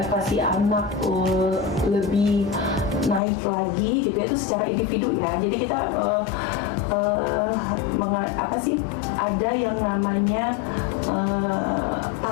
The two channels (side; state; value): right; drops out; at 3.2 s